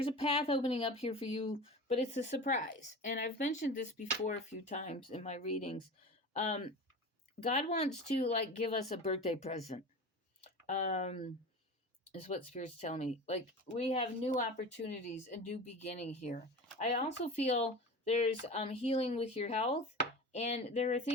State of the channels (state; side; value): normal; both; correlation 0.32